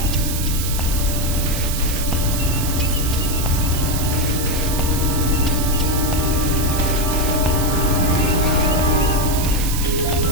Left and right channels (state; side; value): noise; right; hiss, 5 dB below the sound